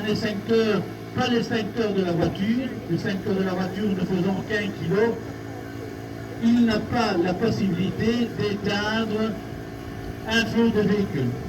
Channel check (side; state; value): both; identical; correlation 1.00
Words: extincteur, pas l'extincteur de la voiture, l'extincteur de la voiture ne faisant qu'1 kg, il n'a pas la possibilité d'éteindre un feu de véhicule.